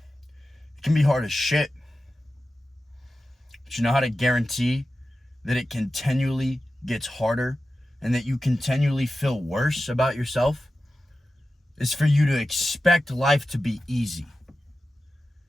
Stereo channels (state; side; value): normal; both; correlation 0.93